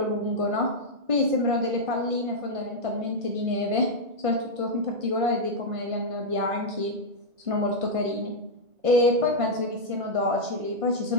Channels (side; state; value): left; late; 1.5 ms